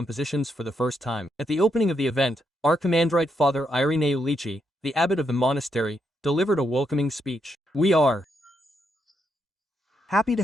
for the first time. At the opening of the event, Archimandrite Father Irineu Lici, the abbot of the monastery, delivered a welcoming speech. We are happy to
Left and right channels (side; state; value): both; normal; correlation 0.79